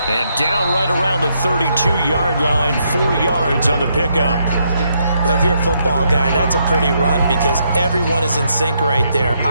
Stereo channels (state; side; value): inverted; both; correlation -0.76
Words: And down right around the 32-yard line, 4 yards on the pickup. Well, if you're a football guy, that's a pretty run, because everyone is in sync right there.